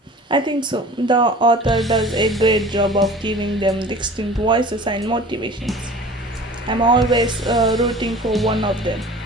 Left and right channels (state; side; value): normal; both; correlation 0.42